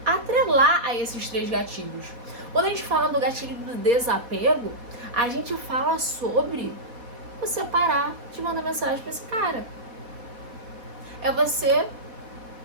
atrelar a esses 3 gatilhos. Quando a gente fala do gatilho do desapego, a gente fala sobre você parar de mandar mensagem pra esse cara. É você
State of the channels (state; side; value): late; left; 4.1 ms